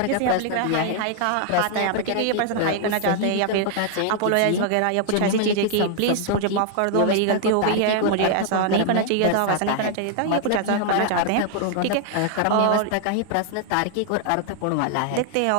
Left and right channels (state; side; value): different; both; correlation 0.00